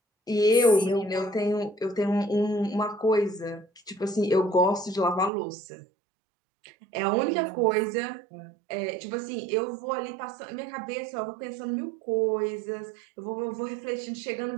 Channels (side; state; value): left; drops out; at 5.3 s